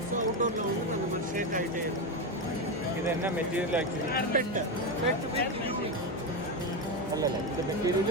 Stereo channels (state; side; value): normal; both; correlation 0.12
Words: ஸோ அவுட்டோரில் வந்து அந்த மாதிரி ஷேக் ஆகிட்டே இருக்கும். இது என்ன மெட்டீரியல் ஆக்சுவலி? பெட்டு அல்ல இந்த மெட்டீரியல்